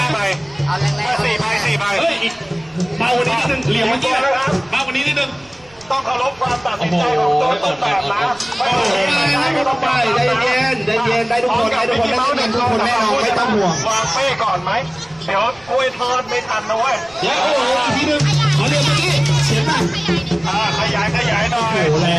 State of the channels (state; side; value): noise; right; rumble, 29 dB below the sound